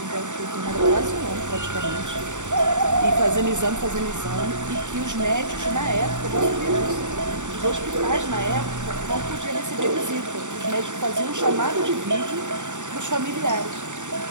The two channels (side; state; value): left; late; 0.85 ms